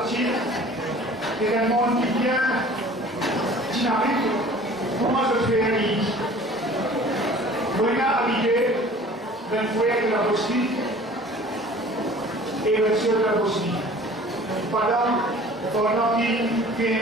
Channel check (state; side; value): normal; both; correlation 0.47